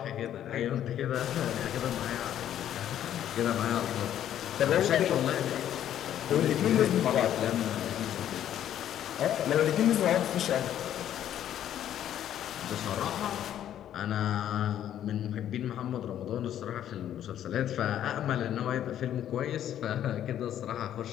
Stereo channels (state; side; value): quieter; right; 10.9 dB